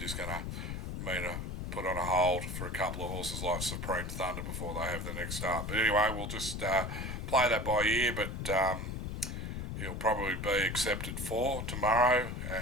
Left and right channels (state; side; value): noise; left; rumble, 4 dB below the sound